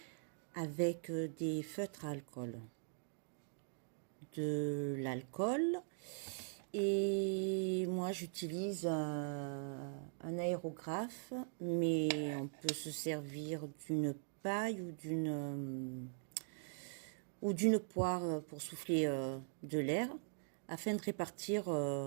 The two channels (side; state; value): left; silent; digital silence